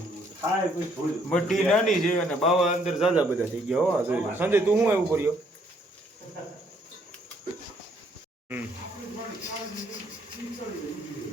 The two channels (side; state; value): both; normal; correlation 0.67